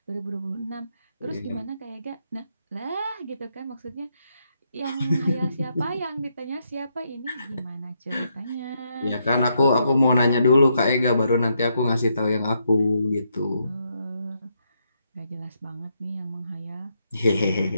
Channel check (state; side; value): inverted; both; correlation -0.78